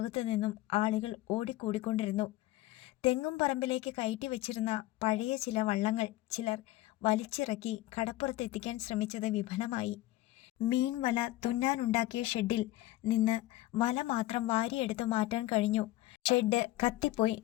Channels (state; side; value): quieter; right; 16.6 dB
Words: നിന്നും ആളുകൾ ഓടിക്കൂടിക്കൊണ്ടിരുന്നു. തെങ്ങും പറമ്പിലേക്ക് കയറ്റി വെച്ചിരുന്ന പഴയ ചില വള്ളങ്ങൾ ചിലർ വലിച്ചിറക്കി കടപ്പുറത്തെത്തിക്കാൻ ശ്രമിച്ചത് വിഫലമായി. മീൻ വല തുന്നാനുണ്ടാക്കിയ ഷെഡിൽ നിന്ന് വല മാത്രം വാരിയെടുത്ത് മാറ്റാൻ കഴിഞ്ഞു. ഷെഡ് കത്തിപ്പോയി.